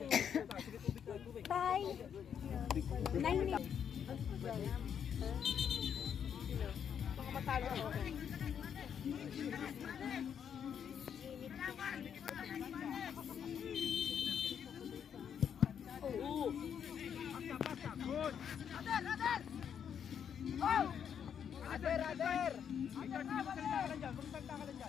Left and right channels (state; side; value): quieter; right; 8.1 dB